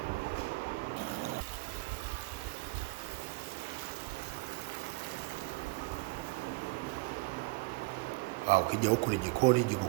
Ukija huku ni jikoni, jiko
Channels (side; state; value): left; quieter; 24.3 dB